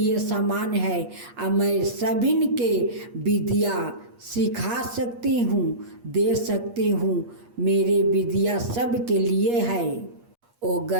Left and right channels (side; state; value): left; late; 8.4 ms